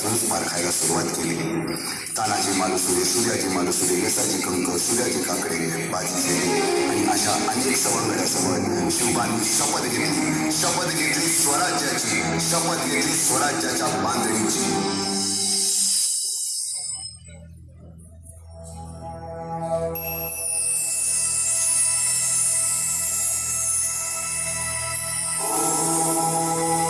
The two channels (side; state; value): both; identical; correlation 1.00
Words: पारखायला सुरुवात केली. तानाजी मालुसरे, सूर्याजी मालुसरे, यसाजी कंक, सूर्याजी काकडे, बाजी शेरे आणि अशा अनेक सवंगड्यासमोर शिवबांनी शपथ घेतली स्वराज्याची, शपथ घेतली स्वराज्याच्या बांधणीची.